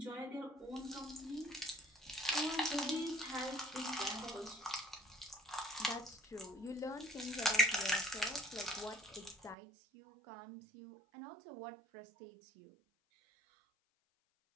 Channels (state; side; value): drops out; left; at 9.6 s